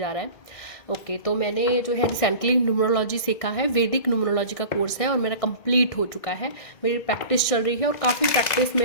रहा है। ओके, तो मैंने जो है रिसेंटली न्यूमरोलॉजी सीखा है, वैदिक न्यूमरोलॉजी का कोर्स है और मेरा कंप्लीट हो चुका है। मेरी प्रैक्टिस चल रही है और काफ़ी प्रैक्टिस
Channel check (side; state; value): right; late; 1.6 ms